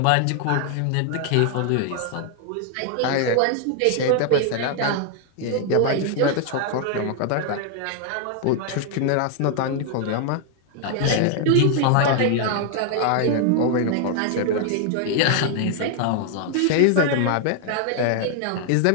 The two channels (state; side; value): different; both; correlation 0.00